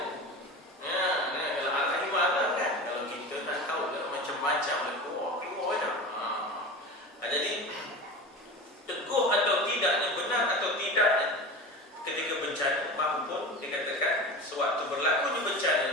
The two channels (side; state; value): both; normal; correlation 0.31